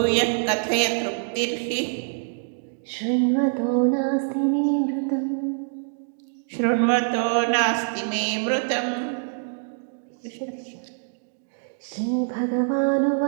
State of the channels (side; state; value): left; silent; digital silence